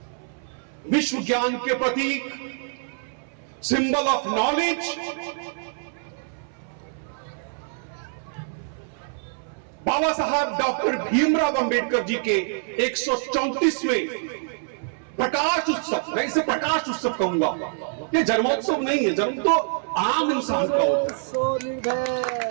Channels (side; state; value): left; silent; 62 dB below the other